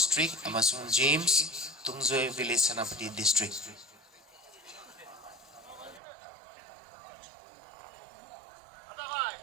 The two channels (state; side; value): drops out; left; at 6.0 s